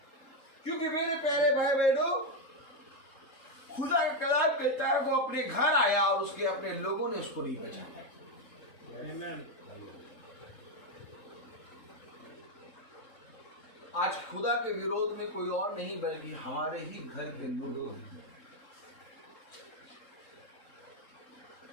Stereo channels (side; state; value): right; late; 3.7 ms